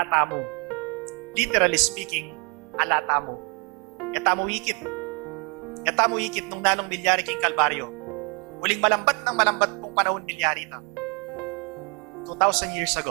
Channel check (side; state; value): left; quieter; 33.7 dB